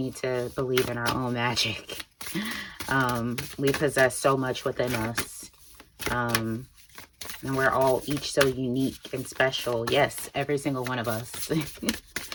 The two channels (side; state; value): both; identical; correlation 1.00